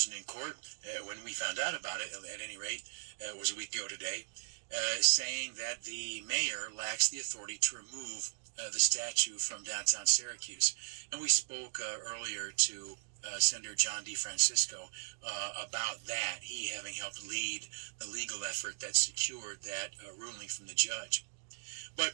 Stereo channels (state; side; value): silent; left; digital silence